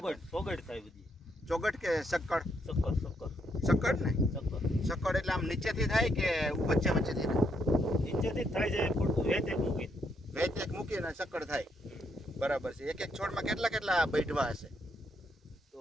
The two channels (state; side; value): normal; both; correlation 0.75